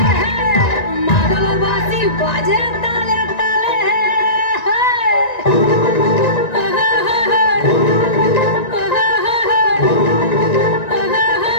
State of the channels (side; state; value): right; late; 1.9 ms